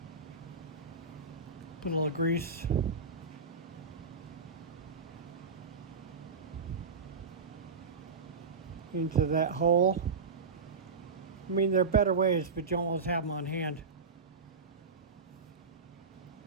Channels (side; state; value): left; quieter; 4.7 dB